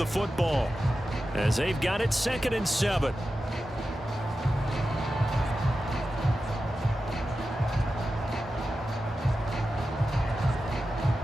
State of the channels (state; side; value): normal; both; correlation 0.92